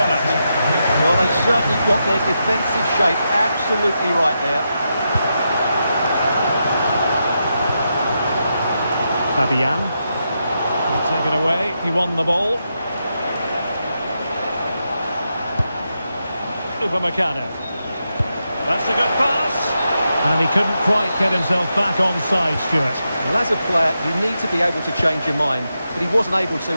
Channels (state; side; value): inverted; both; correlation -0.85